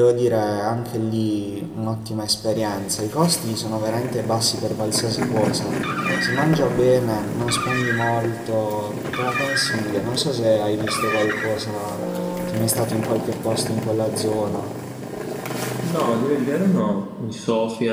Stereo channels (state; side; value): identical; both; correlation 1.00